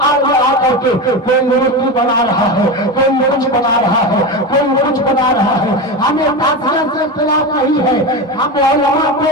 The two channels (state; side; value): normal; both; correlation 0.21